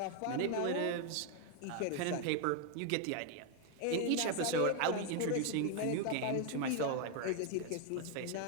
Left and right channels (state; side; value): different; both; correlation 0.01